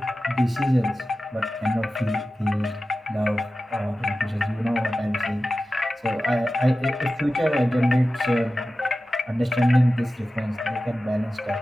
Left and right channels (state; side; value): normal; both; correlation 0.94